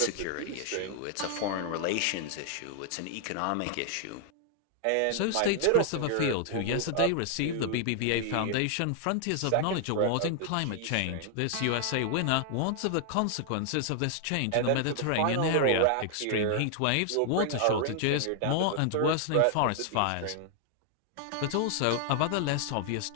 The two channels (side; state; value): both; different; correlation 0.00